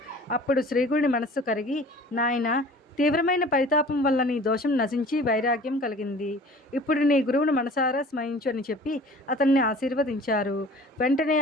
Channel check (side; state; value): both; normal; correlation 0.46